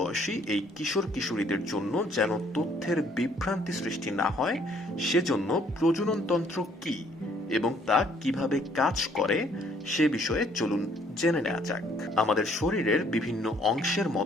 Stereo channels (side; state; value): both; normal; correlation 0.63